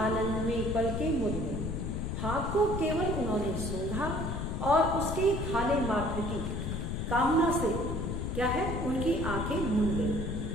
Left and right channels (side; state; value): left; noise; rumble, 2 dB below the sound